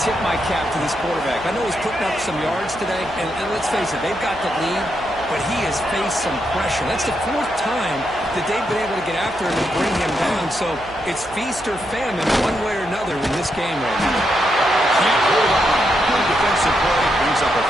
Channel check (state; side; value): noise; right; hum, 20 dB below the sound